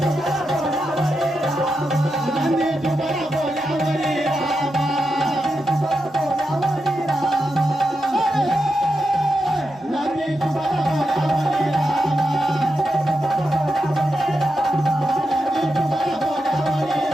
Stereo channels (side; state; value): both; normal; correlation 0.87